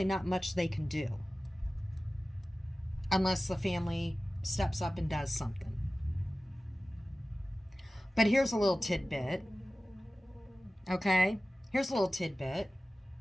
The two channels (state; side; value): normal; both; correlation 0.97